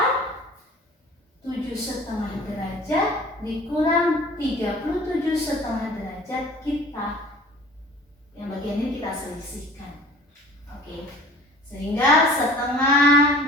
7,5 derajat dikurang 37,5 derajat kita, yang bagian ini kita selisihkan. Oke, sehingga setengah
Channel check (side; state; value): both; normal; correlation 0.46